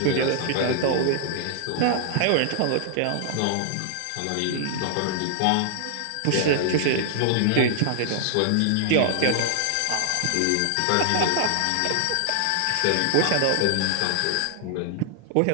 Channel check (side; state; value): both; different; correlation 0.00